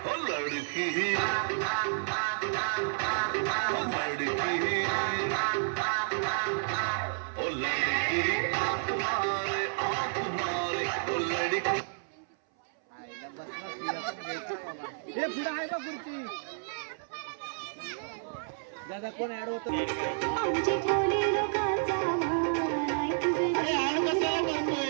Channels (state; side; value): silent; left; 57 dB below the other